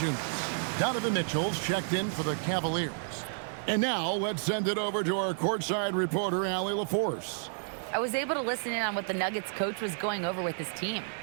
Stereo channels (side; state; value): left; silent; digital silence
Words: Donovan Mitchell's checked in for the Cavaliers. And now let's send it over to our courtside reporter, Allie LaForce. I was able to listen in on what the Nuggets coach was going over with his team.